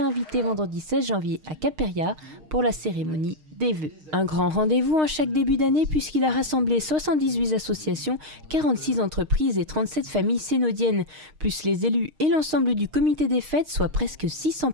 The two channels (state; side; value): late; left; 6.5 ms